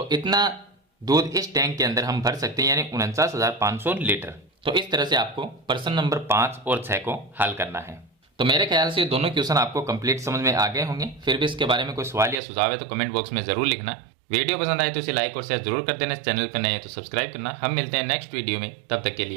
इतना दूध इस टैंक के अंदर हम भर सकते हैं, यानी 49,500 लीटर। तो इस तरह से आपको प्रश्न नंबर 5 और 6 को हल करना है। तो मेरे ख्याल से ये दोनों क्वेश्चन आपको कंप्लीट समझ में आ गए होंगे। फिर भी इसके बारे में कोई सवाल या सुझाव है तो कमेंट बॉक्स में जरूर लिखना। वीडियो पसंद आए तो इसे लाइक और शेयर जरूर कर देना। चैनल पर नए हैं तो सब्सक्राइब करना। हम मिलते हैं नेक्स्ट वीडियो में, तब तक के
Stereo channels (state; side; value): drops out; left; at 12.4 s